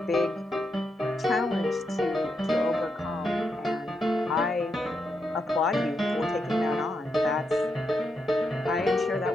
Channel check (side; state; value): both; normal; correlation 0.83